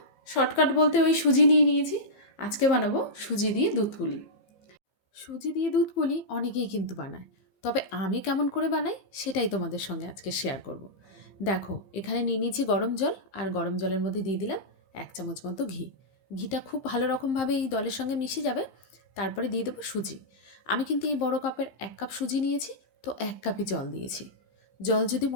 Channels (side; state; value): right; late; 15 ms